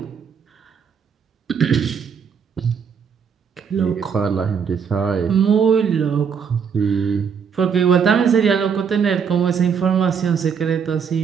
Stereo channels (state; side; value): quieter; left; 6.7 dB